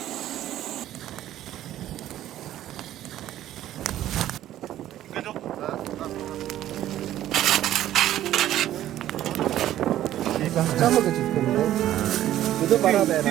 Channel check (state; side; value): quieter; left; 12.9 dB